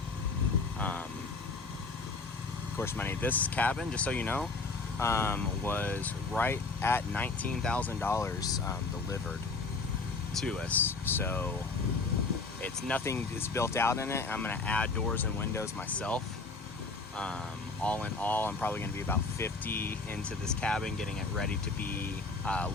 of course, this cabin, just so you know, was right at $19,000 delivered to us. So it's nothing is built out in it. I'm going to add doors and windows myself. All in all, I'm probably going to be about 50 into this cabin, getting it ready to be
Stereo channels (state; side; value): quieter; right; 4.0 dB